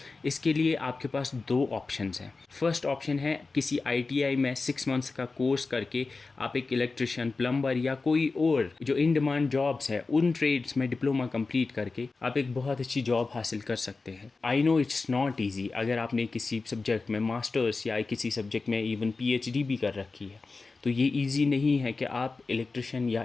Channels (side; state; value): right; quieter; 3.9 dB